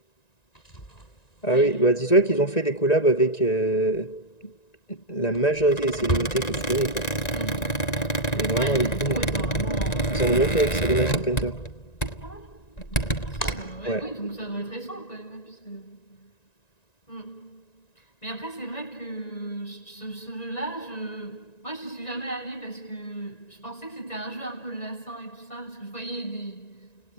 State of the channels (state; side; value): late; right; 1.9 ms